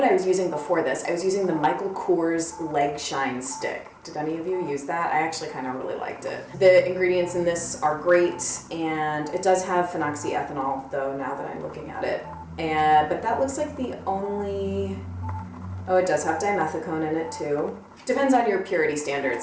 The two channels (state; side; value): identical; both; correlation 1.00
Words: I was using before this? I was using the Michael Kors Leg Shine Stick. Did any of you use that? I actually kind of really liked it. The ingredients in this are great, and it does have phenoxyethanol though, now that I'm looking at it. But that looks like the only, oh, it does have dimethicone in it too. Depends on your purity